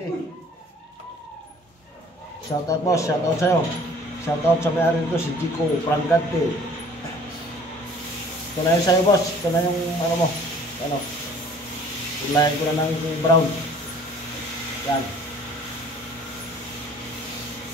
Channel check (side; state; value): both; normal; correlation 0.52